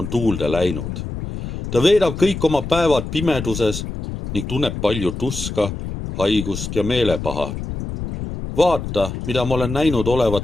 tuulde läinud. Ta veedab kõik oma päevad pimeduses ning tunneb palju tuska, haigust ja meelepaha. Vaata, mida ma olen näinud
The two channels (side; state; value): left; noise; rumble, 7 dB below the sound